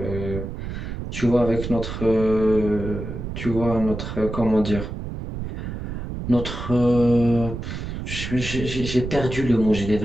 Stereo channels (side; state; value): right; noise; rumble, 6 dB below the sound